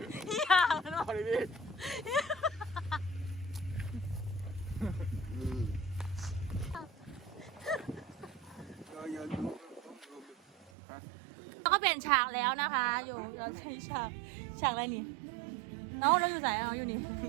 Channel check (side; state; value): left; drops out; at 10.7 s